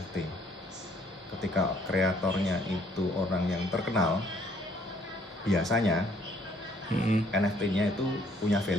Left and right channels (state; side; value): normal; both; correlation 0.64